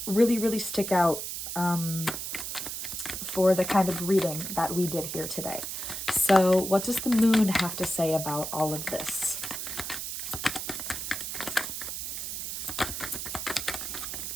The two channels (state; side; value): noise; right; hiss, 5 dB below the sound